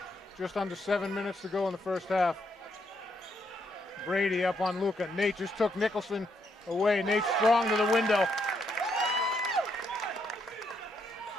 Just under 7 minutes to go in the first half. Brady up on Luca. Nate just took Nicholson away. Nate strong to the window.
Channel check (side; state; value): both; normal; correlation 0.76